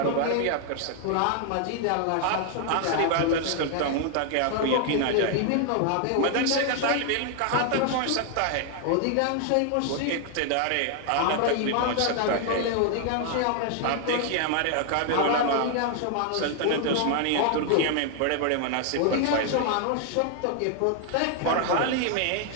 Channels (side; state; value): both; different; correlation 0.00